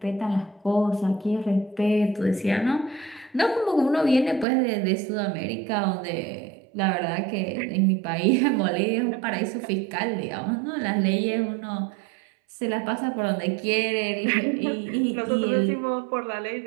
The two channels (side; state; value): left; drops out; at 4.5 s